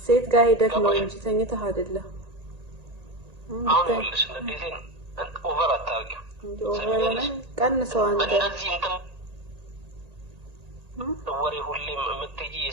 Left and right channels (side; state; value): left; late; 1.8 ms